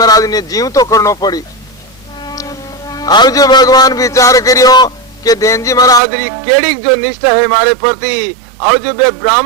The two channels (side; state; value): left; drops out; at 6.0 s